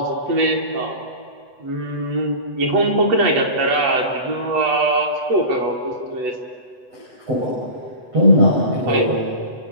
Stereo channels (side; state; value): left; late; 8.0 ms